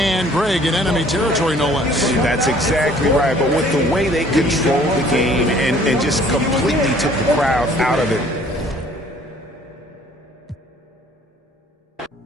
Greg in enemy territory, no less. That's exactly right. But with the way they controlled the game and just completely took the crowd out of it.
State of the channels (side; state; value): both; normal; correlation 0.56